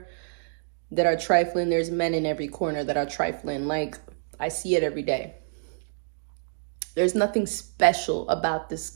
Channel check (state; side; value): silent; left; digital silence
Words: that are trifling. There's men in every corner that are trifling. Like, I see it every day. There's nothing special about this